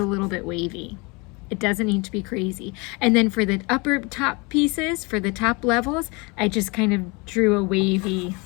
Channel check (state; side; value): quieter; right; 28.0 dB